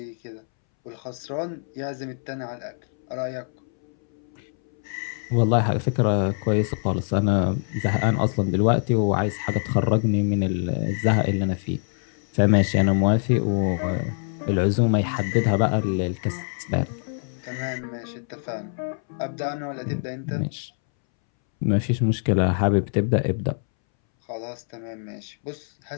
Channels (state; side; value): silent; right; 62 dB below the other